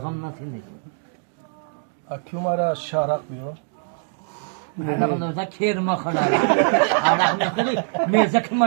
اکیو مرا شارق بیو علاقه نوزا کیر مخوره علاقه نخوری میزه که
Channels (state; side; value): silent; left; 63 dB below the other